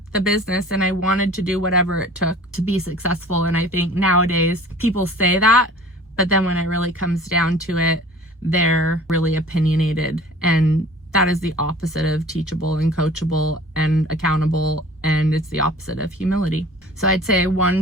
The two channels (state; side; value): normal; both; correlation 0.46